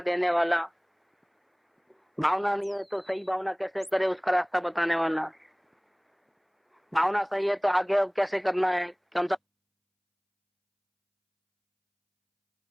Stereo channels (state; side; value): identical; both; correlation 1.00